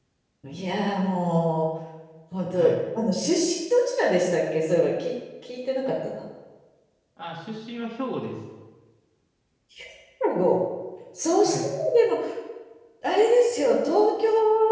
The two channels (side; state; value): both; identical; correlation 1.00